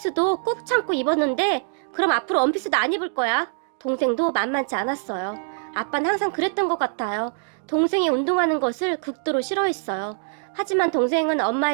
꼭 참고 입었는데 그럼 앞으로 원피스도 안 입을 거야. 동생도 만만치 않았어요. 아빠는 항상 그랬던 것 같아요. 동생이 운동하는 것을 극도로 싫어했어요. 하지만 동생은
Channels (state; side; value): silent; left; digital silence